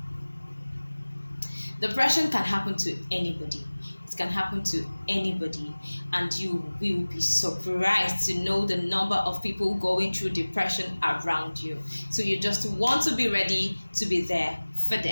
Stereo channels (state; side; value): inverted; both; correlation -1.00